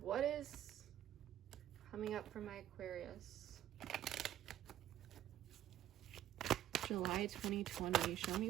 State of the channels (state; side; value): quieter; left; 12.0 dB